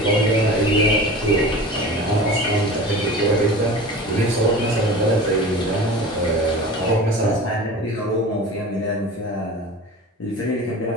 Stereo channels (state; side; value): normal; both; correlation 0.36